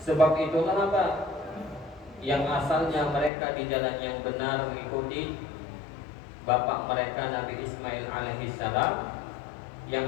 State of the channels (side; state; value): right; drops out; at 3.3 s